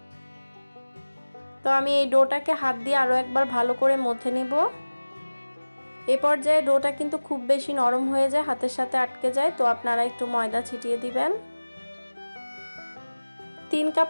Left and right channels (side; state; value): both; inverted; correlation -1.00